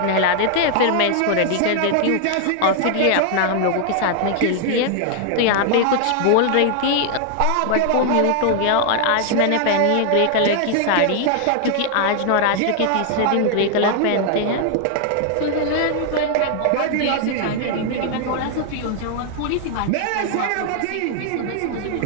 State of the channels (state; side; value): different; both; correlation 0.00